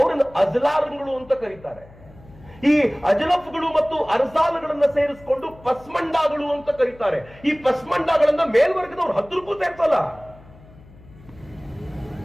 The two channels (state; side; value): noise; left; hum, 23 dB below the sound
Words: ಅಜ್ಲಾರ್ಗಳು ಅಂತ ಕರೀತಾರೆ. ಈ ಅಜಲಫ್ಗಳು ಮತ್ತು ಅರ್ಜಾಲ್ಗಳನ್ನ ಸೇರಿಸಿಕೊಂಡು ಪಸ್ಮಂಡಾಗಳು ಅಂತ ಕರೀತಾರೆ. ಈ ಪಸ್ಮಂಡಾಗಳನ್ನ ಮೇಲ್ವರ್ಗದವ್ರು 10 ರೂಪಾಯಿ ಸೇರ್ಸಲ್ಲ.